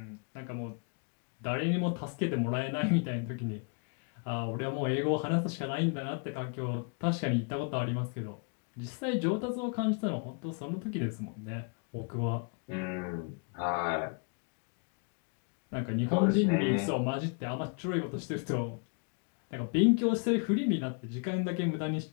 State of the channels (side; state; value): right; quieter; 39.5 dB